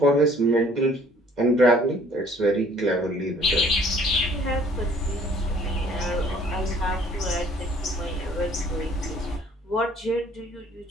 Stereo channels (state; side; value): normal; both; correlation 0.56